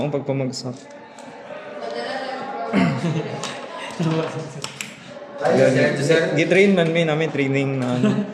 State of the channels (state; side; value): identical; both; correlation 1.00